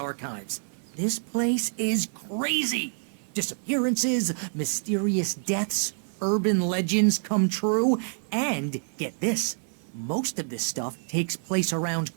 This place is crazy. Disappearances, mysterious deaths, urban legends come true, and, get this, most of this stuff takes place around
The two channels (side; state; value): left; silent; digital silence